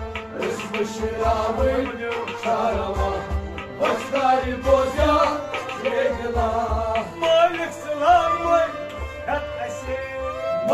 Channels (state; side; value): identical; both; correlation 1.00